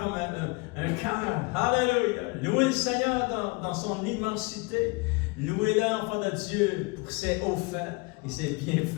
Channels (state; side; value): quieter; right; 27.3 dB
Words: un cœur. Alléluia. Louez le Seigneur dans son immensité. Louez-le, enfant de Dieu, pour ses hauts faits et ses